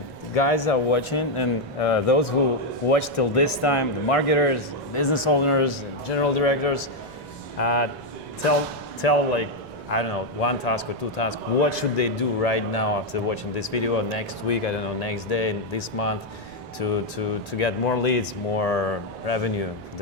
guys are watching, and those who watch till this time, the marketers, business owners, and general directors, tell like, I don't know, one task or two tasks. What should they do right now after watching this video, or next week, I don't know, next day, this month, to get more leads, more revenue for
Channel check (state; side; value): noise; left; rumble, 26 dB below the sound